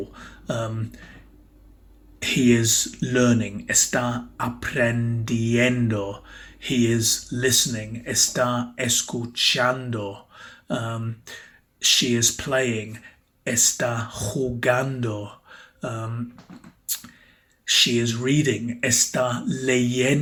he is learning, está aprendiendo. He is listening, está escuchando. She is playing, está jugando. She is reading, está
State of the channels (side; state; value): both; identical; correlation 1.00